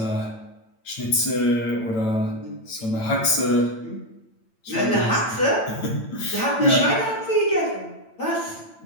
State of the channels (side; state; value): right; late; 8.9 ms